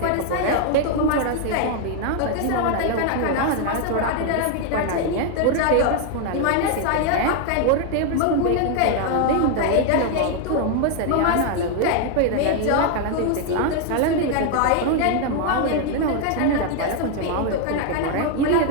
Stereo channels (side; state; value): both; different; correlation 0.01